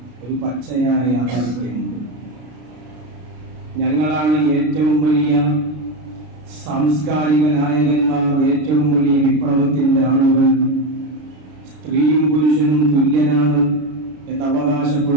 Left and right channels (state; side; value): late; left; 33 ms